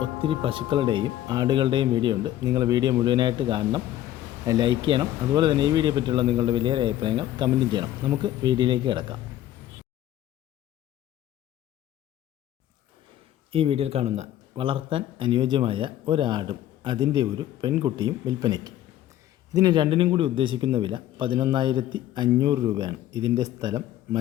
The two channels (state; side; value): quieter; right; 12.9 dB